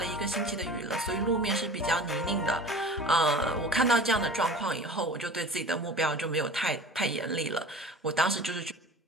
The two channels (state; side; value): normal; both; correlation 0.40